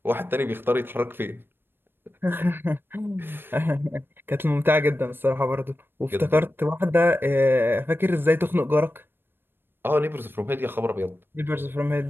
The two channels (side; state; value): left; late; 0.10 ms